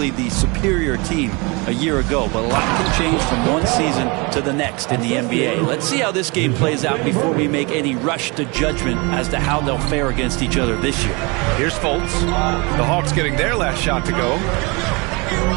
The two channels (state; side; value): quieter; left; 28.1 dB